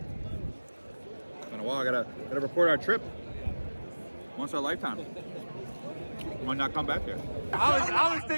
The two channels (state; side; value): inverted; both; correlation -1.00